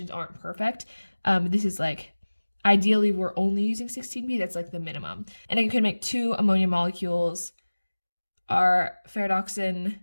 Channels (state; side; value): inverted; both; correlation -1.00